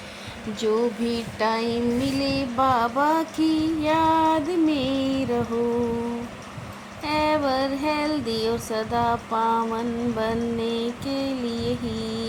जो भी टाइम मिले बाबा की याद में रहो। एवर हेल्दी और सदा पावन बनने के लिए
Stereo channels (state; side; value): identical; both; correlation 1.00